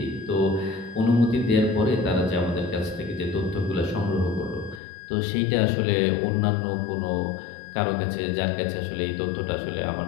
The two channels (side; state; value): right; drops out; at 4.8 s